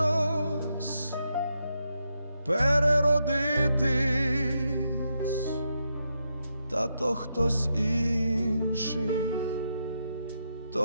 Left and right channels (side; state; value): both; inverted; correlation -0.83